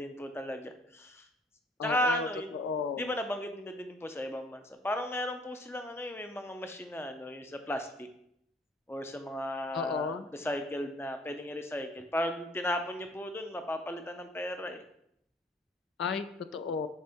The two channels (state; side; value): normal; both; correlation 0.57